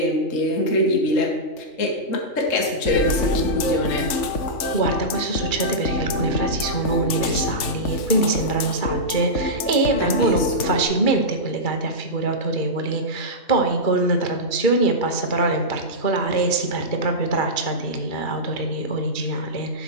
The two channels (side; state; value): right; late; 3.4 ms